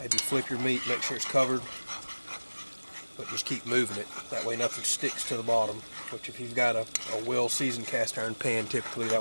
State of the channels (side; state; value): both; inverted; correlation -1.00